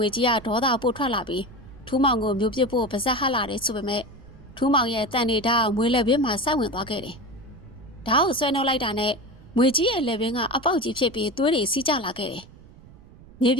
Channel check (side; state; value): right; noise; rumble, 22 dB below the sound